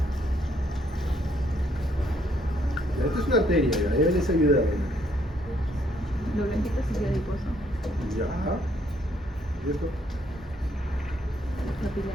Esta es una arteria, ya les ayuda. Lo blanquito es adiposo. Ya. ¿Y esto?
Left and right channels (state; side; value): normal; both; correlation 0.69